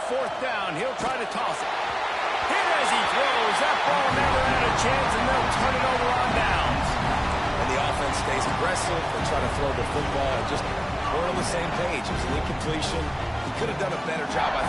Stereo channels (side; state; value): both; identical; correlation 1.00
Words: 4th down, he'll try to toss it. Hit as he throws. That ball never had a chance, and they'll turn it over on downs. And the offense stays aggressive. They try to throw the football and just we're on the same page. It was an incompletion. He could have done a better job, I